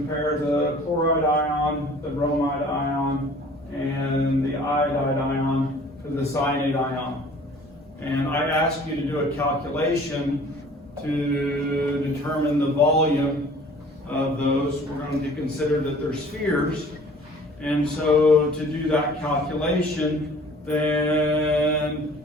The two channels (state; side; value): normal; both; correlation 0.50